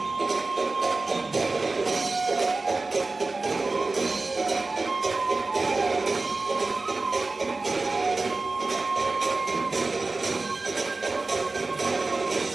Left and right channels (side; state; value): left; quieter; 3.5 dB